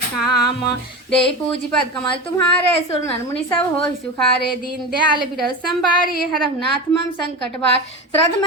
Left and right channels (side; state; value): both; normal; correlation 0.24